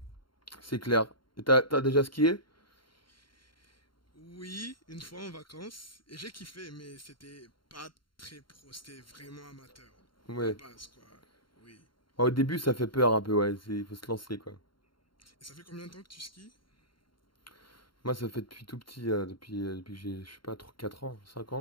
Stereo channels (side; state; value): right; late; 0.73 ms